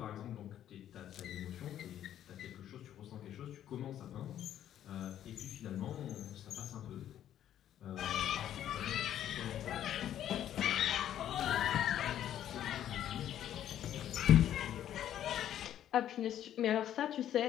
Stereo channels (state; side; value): quieter; right; 11.1 dB